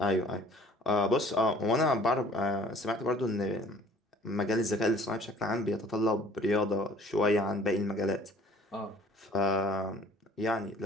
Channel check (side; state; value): both; normal; correlation 0.53